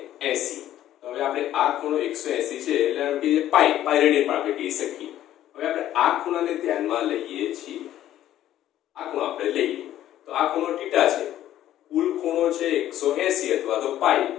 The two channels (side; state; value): right; quieter; 12.6 dB